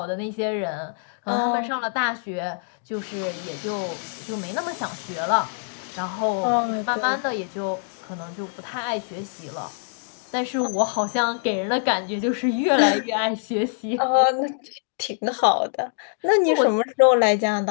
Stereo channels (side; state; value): right; silent; digital silence